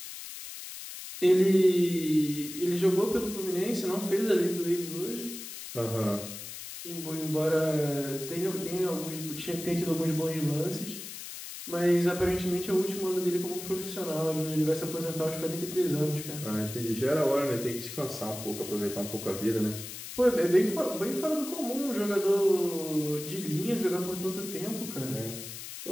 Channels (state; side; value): noise; left; hiss, 10 dB below the sound